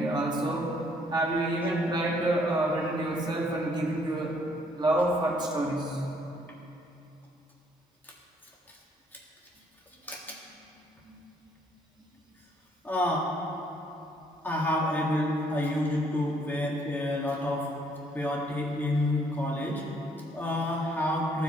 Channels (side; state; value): both; normal; correlation 0.66